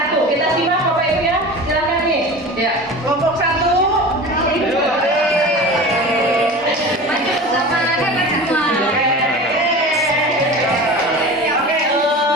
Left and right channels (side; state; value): both; normal; correlation 0.34